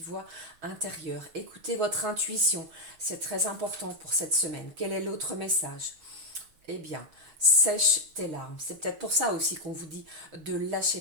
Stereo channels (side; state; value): left; late; 6.2 ms